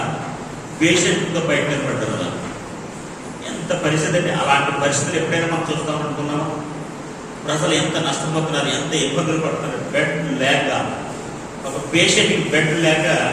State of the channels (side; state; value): both; identical; correlation 1.00